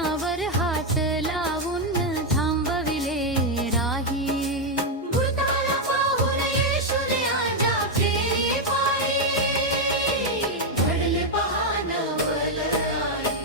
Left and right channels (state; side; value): normal; both; correlation 0.02